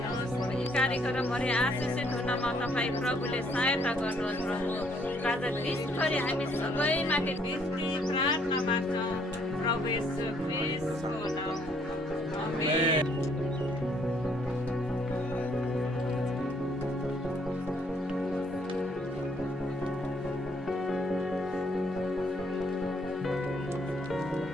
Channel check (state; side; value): normal; both; correlation 0.67